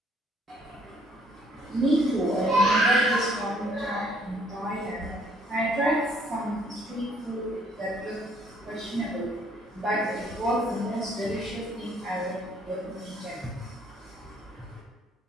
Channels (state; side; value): normal; both; correlation 0.63